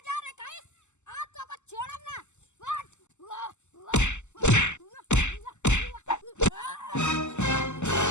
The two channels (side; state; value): right; late; 0.83 ms